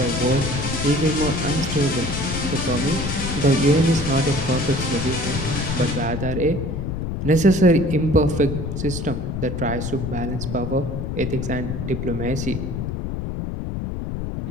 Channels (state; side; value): noise; left; rumble, 4 dB below the sound